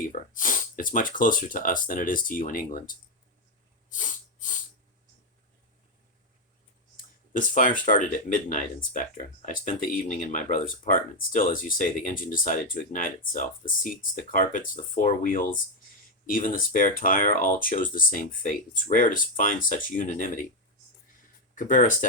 It's much closer to us than it is to you in England. This fire started at midnight, Inspector. I spent the evening in my brother's apartment. Still, as you say, the engine decided to ignite itself. The seats, the carpets, the four wheels, even the spare tire, all chose the same fate. It's rare to find such unanimity. Cabrera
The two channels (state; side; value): normal; both; correlation 0.04